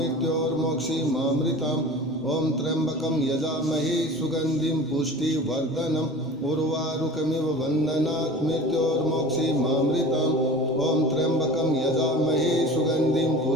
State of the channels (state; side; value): normal; both; correlation 0.39